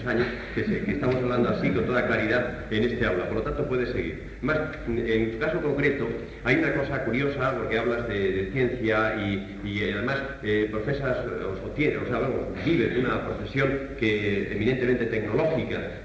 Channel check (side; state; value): both; identical; correlation 1.00